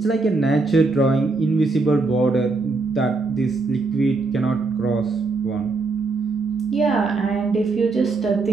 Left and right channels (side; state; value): left; quieter; 3.7 dB